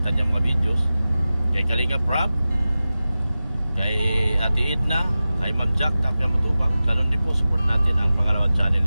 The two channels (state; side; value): inverted; both; correlation -0.95